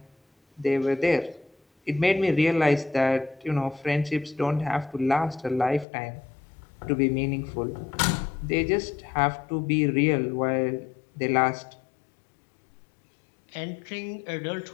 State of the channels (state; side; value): drops out; right; at 5.9 s